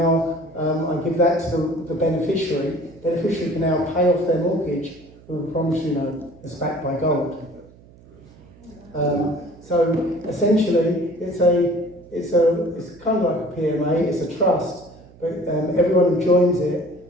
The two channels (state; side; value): noise; right; hum, 24 dB below the sound